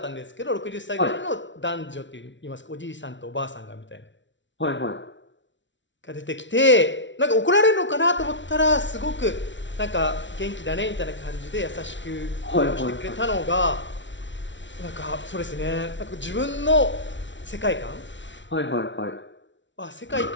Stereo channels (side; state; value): right; late; 0.54 ms